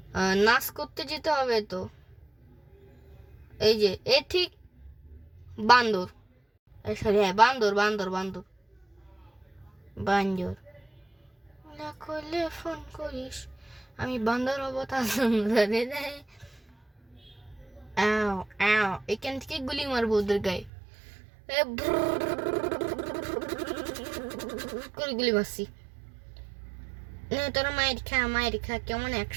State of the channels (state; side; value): drops out; left; at 20.7 s